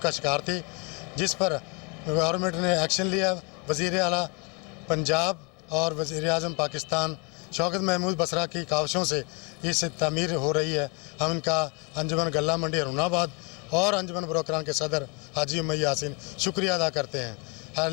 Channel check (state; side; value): quieter; right; 31.1 dB